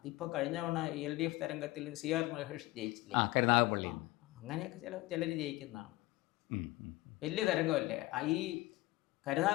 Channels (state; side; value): quieter; right; 19.7 dB